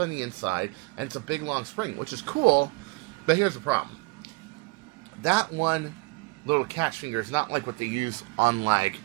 the inside, and it's a big long spring, which is cool, but here's the problem. That one little catch finger is not like what they use on like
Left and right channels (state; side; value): quieter; left; 24.6 dB